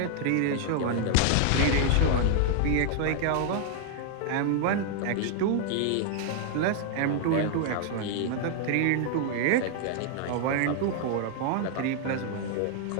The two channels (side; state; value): both; different; correlation 0.00